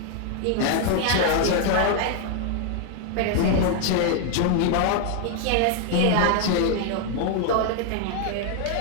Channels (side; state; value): both; different; correlation 0.00